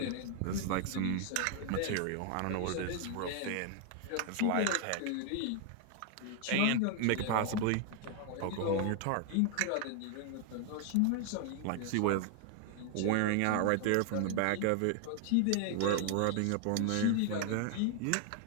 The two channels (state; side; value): different; both; correlation 0.00